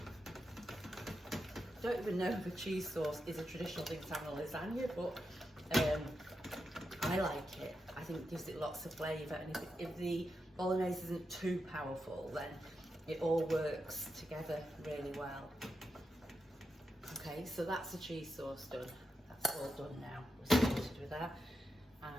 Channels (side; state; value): both; normal; correlation 0.87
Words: don't even know if a cheese sauce is a traditional thing to have in a lasagna, but I like it. I think it gives it lots of flavour, and if the bolognese isn't too powerful, then it all works together really well. Okay, so that's the cheese sauce done. That's all done now. We're sorted with that. And